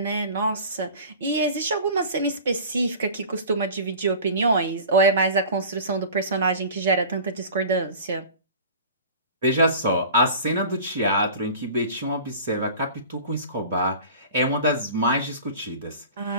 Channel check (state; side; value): inverted; both; correlation -0.40